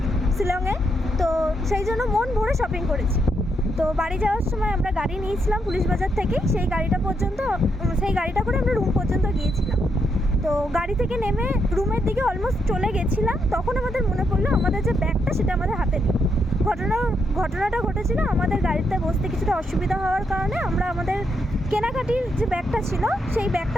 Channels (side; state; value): both; normal; correlation 0.79